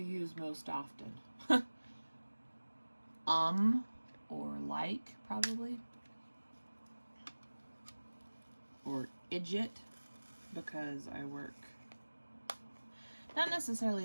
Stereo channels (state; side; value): inverted; both; correlation -1.00